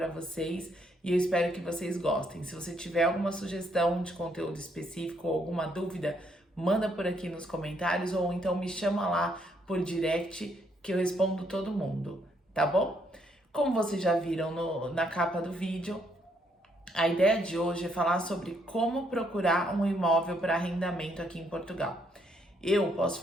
vocês e eu espero que vocês gostem. Se você tiver alguma sugestão de conteúdo específico ou alguma dúvida, manda por aqui nos comentários ou então me chama lá por direct que eu respondo todo mundo, tá bom? Como vocês já viram na capa do vídeo, a ideia de hoje é falar sobre como procurar um imóvel para arrendamento aqui em Portugal. Eu posso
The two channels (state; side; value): normal; both; correlation 0.72